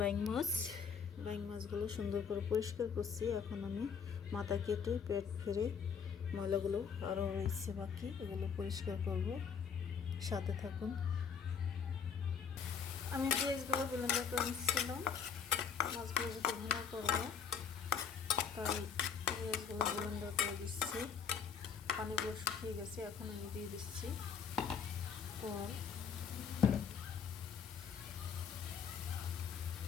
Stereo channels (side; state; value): right; quieter; 6.8 dB